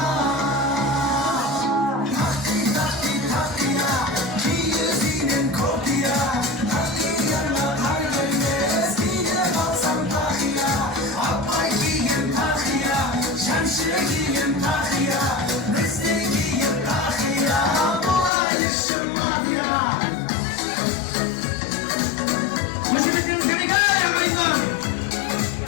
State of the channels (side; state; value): right; drops out; at 18.3 s